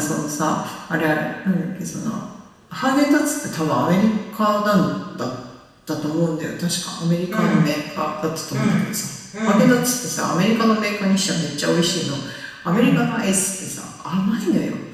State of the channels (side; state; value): both; identical; correlation 1.00